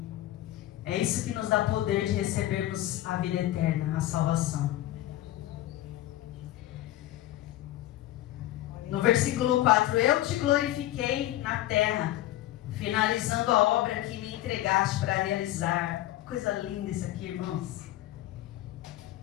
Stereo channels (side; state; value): right; quieter; 14.8 dB